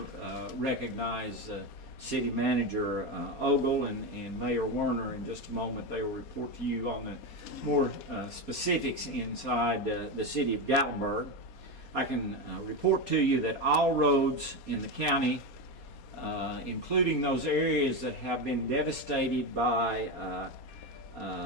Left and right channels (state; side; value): late; right; 4.2 ms